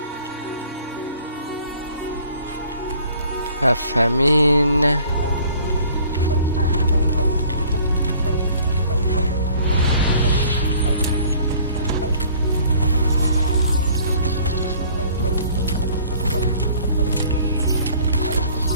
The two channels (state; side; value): inverted; both; correlation -0.54